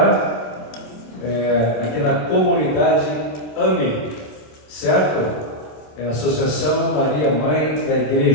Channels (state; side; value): late; right; 27 ms